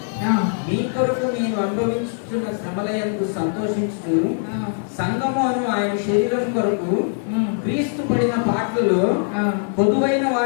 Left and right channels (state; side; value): silent; right; 63 dB below the other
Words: మీ కొరకు నేను అనుభవించుతున్న శ్రమలయందు సంతోషించుతూ సంగము అను ఆయన శరీరం కొరకు క్రీస్తు పడిన పాటలలో పొదువైన